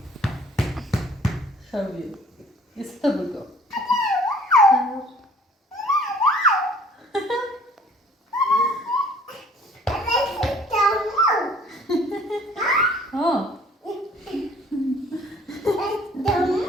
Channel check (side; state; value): both; normal; correlation 0.55